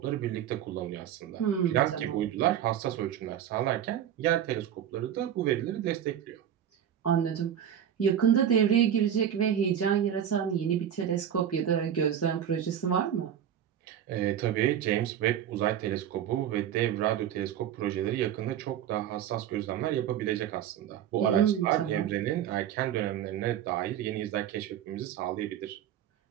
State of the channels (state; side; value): quieter; left; 9.8 dB